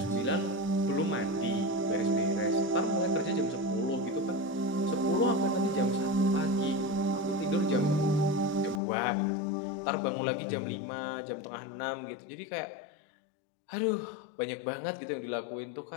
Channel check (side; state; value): right; drops out; at 8.8 s